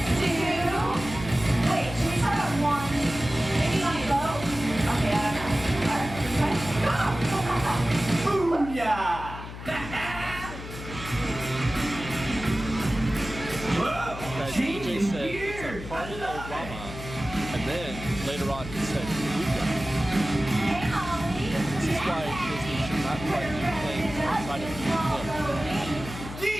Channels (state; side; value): noise; left; hum, 11 dB below the sound